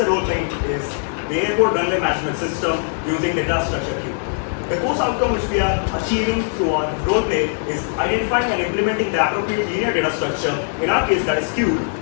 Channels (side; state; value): right; silent; digital silence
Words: role playing is the Airport Runway Management System using data structure queue. The course outcome which we are achieving through our role play is identifying and implementing the appropriate linear data structure, in our case that is queued,